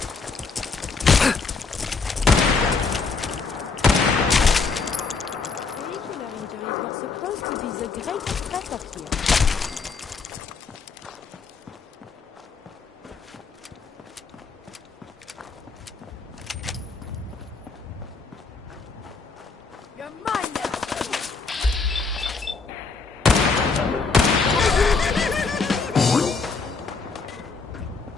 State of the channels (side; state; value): right; quieter; 4.6 dB